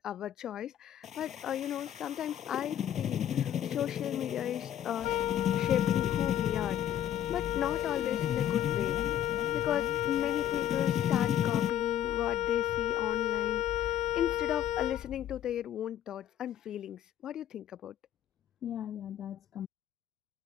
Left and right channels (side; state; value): right; quieter; 11.0 dB